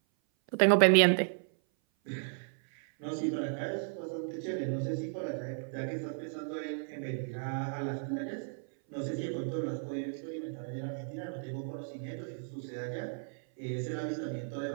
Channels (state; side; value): silent; left; 55 dB below the other